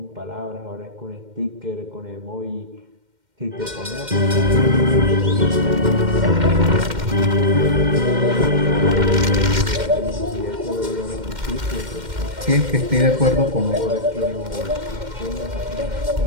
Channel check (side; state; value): left; late; 2.1 ms